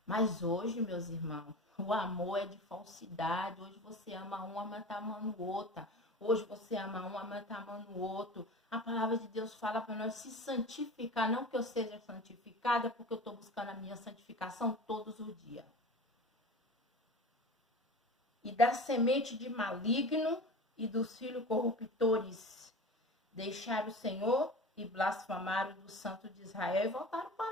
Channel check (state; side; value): normal; both; correlation 0.34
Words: Mas hoje, meus irmãos, o amor é de falsidade. Hoje você ama um, mas está amando o outro. Hoje você ama um, mas está amando o outro. A palavra de Deus fala para nós se santificar. Não que eu seja santificada, porque eu estou buscando a minha santificação todos os dias. E da semente de maligno e dos filhos corruptores deixaram o Senhor e blasfemaram do Santo de Israel e voltaram